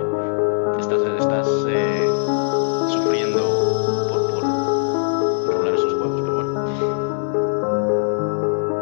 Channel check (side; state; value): right; silent; 65 dB below the other